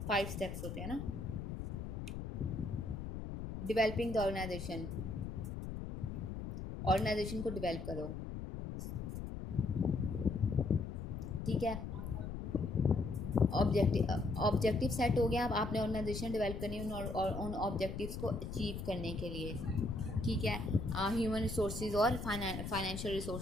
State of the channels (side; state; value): left; noise; rumble, 6 dB below the sound